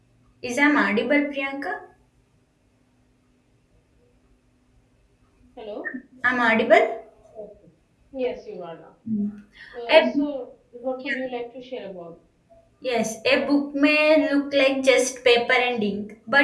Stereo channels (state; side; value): identical; both; correlation 1.00